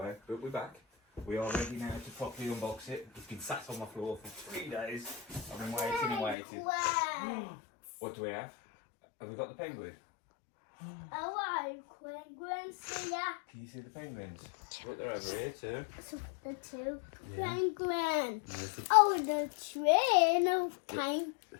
but we're back. We are ready now to properly unbox it. It's been sat on my floor for 3 days. I've been waiting and waiting. What do we have? Have we got the penguin? Oh, penguins here. Can you see the penguins? Look, they're over here too. So the two Yeah. penguins. There's the, Oh, the tree. No pine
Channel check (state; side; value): drops out; right; at 6.4 s